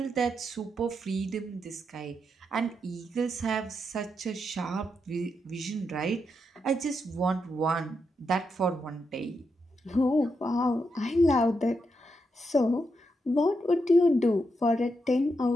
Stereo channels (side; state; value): both; normal; correlation 0.83